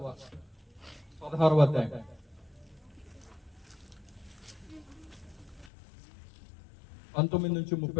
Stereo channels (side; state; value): right; drops out; at 5.7 s